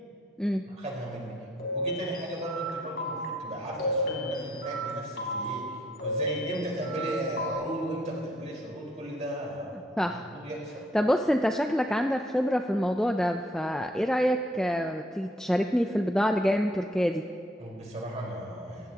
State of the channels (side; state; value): both; normal; correlation 0.68